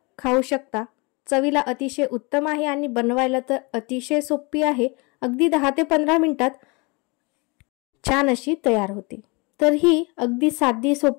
खाऊ शकता। चवीला अतिशय उत्तम आहे आणि बनवायला तर अतिशय सोपी आहे। अगदी 10 ते 15 मिनिटात छान अशी तयार होते। तर ही अगदी साधी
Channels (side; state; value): right; quieter; 28.4 dB